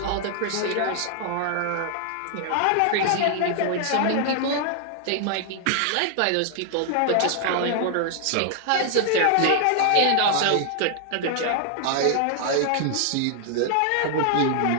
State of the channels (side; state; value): both; different; correlation 0.00